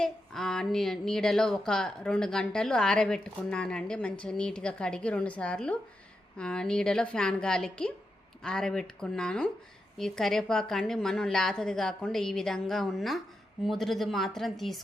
నీడలో ఒక 2 గంటలు ఆరబెట్టుకున్నానండి. మంచిగా నీట్గా కడిగి 2 సార్లు నీడలో ఫ్యాన్ గాలికి ఆరబెట్టుకున్నాను. ఈ కరివేపాకు అండి మనం లేతది కాకుండా ఈ విధంగా ఉన్న ముదురుది మాత్రం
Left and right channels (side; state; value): both; normal; correlation 0.87